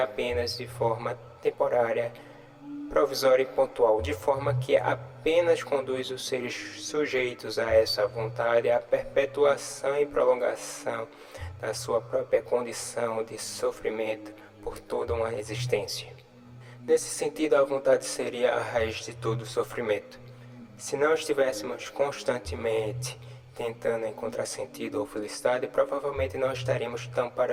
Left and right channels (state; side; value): identical; both; correlation 1.00